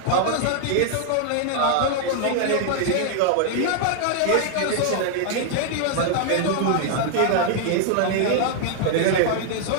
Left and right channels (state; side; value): different; both; correlation 0.00